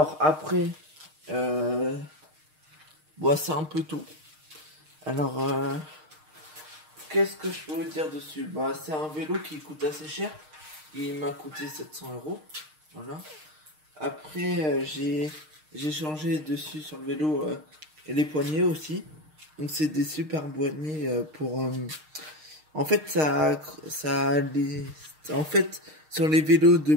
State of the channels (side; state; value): left; late; 6.5 ms